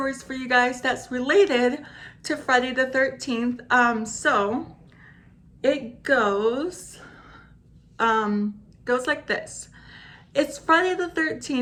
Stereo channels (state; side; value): identical; both; correlation 1.00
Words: for you guys that's related to Friday the 13th. So it goes like this. It's Friday the